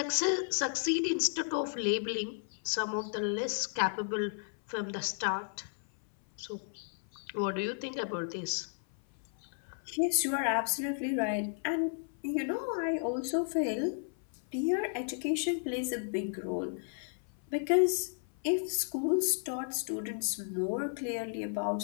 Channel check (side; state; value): right; silent; 55 dB below the other